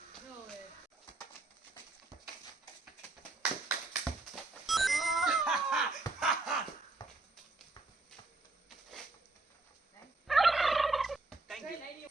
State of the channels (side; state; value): left; quieter; 3.2 dB